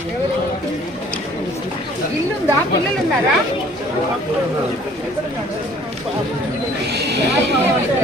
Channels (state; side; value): normal; both; correlation 0.55